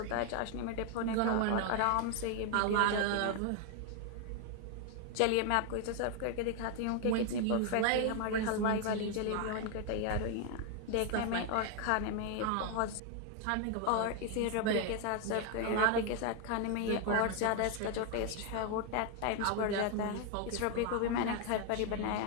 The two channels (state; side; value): different; both; correlation 0.00